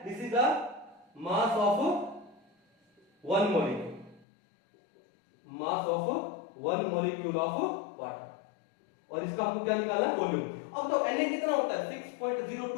this is the mass of 1 molecule, mass of 1 molecule of water, और इसका हमको क्या निकालना है, वॉल्यूम। अब तो Na कितना होता है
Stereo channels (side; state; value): right; drops out; at 4.2 s